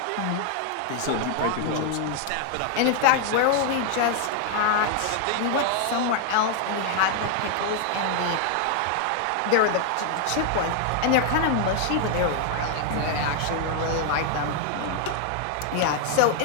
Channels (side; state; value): both; different; correlation 0.00